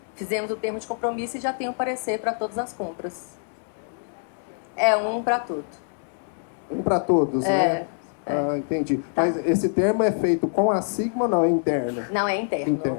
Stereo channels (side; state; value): right; silent; digital silence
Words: Fizemos o termo de compromisso e já tem o parecer para todas as compras. É um para tudo. Um para todos, né? Ah, entendi. Tá. Mas esse termo é feito com a Sigma ou não? É interno? Não, é interno. Interno.